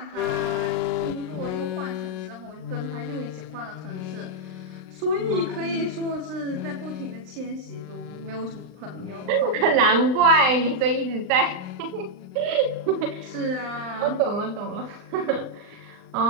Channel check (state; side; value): late; left; 39 ms